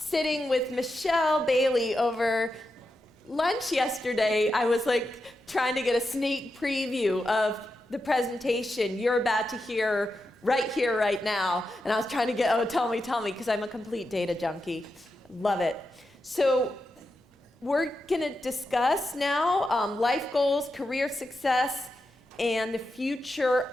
with Michelle Bailey over lunch yesterday, I was like trying to get a sneak preview of the presentation you're about to hear right here, right now. And I was trying to get, oh, tell me, because I'm a complete data junkie. Love it. So we're going to discuss now life goals, career success, and the future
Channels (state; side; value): normal; both; correlation 0.88